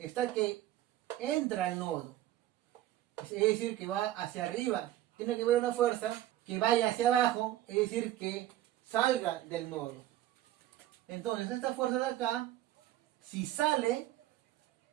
que entra al nodo. Es decir, que va hacia arriba. Tiene que haber una fuerza que vaya hacia abajo, es decir, que salga del nodo. Entonces, esta fuerza de acá, si sale,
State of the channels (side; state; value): left; quieter; 14.0 dB